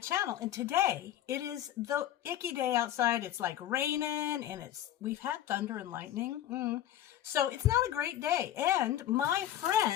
And today it is the icky day outside. It's like raining and we've had thunder and lightning. So it's not a great day. And my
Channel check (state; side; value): quieter; right; 12.2 dB